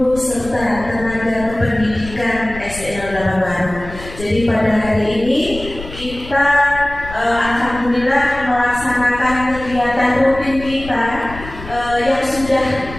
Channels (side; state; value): left; noise; rumble, 14 dB below the sound